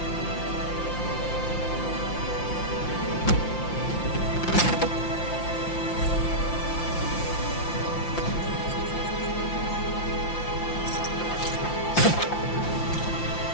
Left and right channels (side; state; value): right; late; 5.8 ms